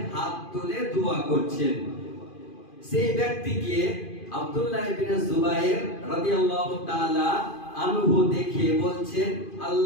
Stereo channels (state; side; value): late; right; 2.5 ms